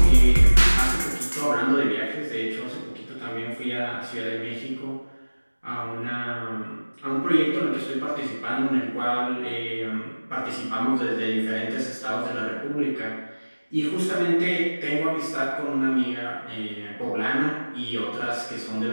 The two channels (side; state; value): both; inverted; correlation -1.00